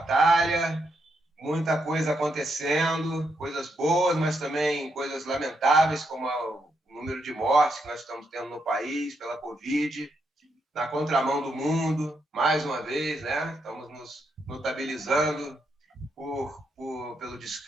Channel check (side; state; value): both; normal; correlation 0.80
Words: Muita coisa acontecendo. Coisas boas, mas também coisas lamentáveis, como o número de mortes que nós estamos tendo no país pela Covid. Na contramão do mundo, mais uma vez, né? Estamos nos notabilizando pelo